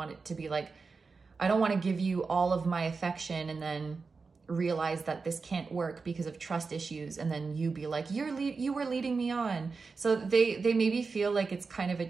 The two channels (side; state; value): left; quieter; 4.6 dB